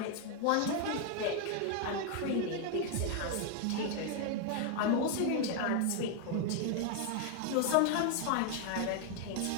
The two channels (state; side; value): different; both; correlation 0.00